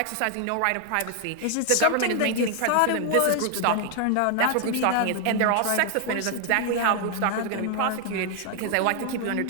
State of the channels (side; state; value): both; different; correlation 0.00